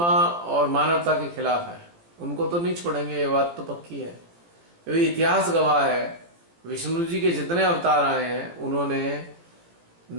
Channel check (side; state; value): left; late; 17 ms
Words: और मानवता के खिलाफ है। उनको तो नहीं छोड़ेंगे, ये बात तो पक्की है। क्योंकि इतिहास गवाह है, विष्णु जी के जितने अवतार आए हैं उन्होंने